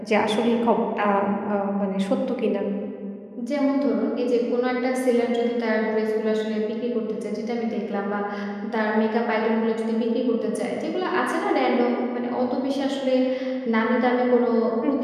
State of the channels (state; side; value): identical; both; correlation 1.00